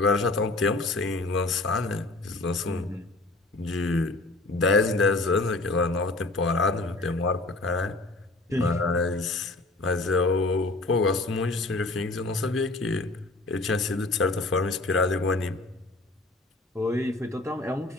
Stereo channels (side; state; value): right; quieter; 3.0 dB